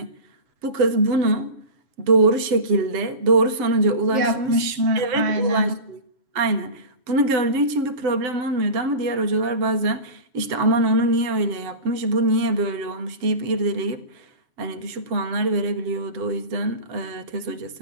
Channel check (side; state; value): left; late; 7.3 ms